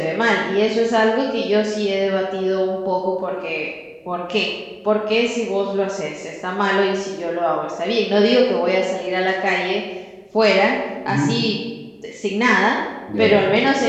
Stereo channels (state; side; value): identical; both; correlation 1.00